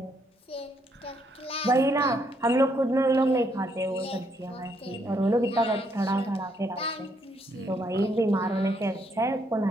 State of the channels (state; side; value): normal; both; correlation 0.73